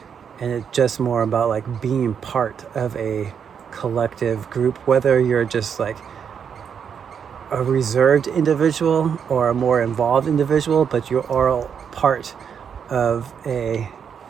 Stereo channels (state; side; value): quieter; left; 7.3 dB